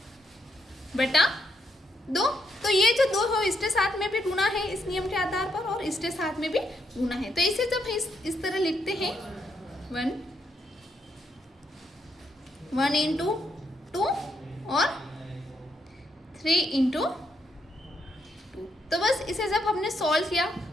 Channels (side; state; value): both; normal; correlation 0.78